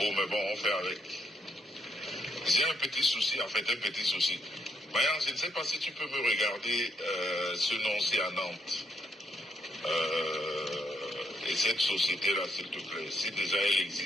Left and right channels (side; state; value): both; normal; correlation 0.75